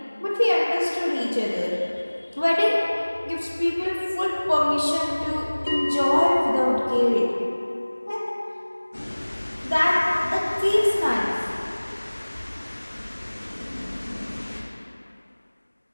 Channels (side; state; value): both; inverted; correlation -1.00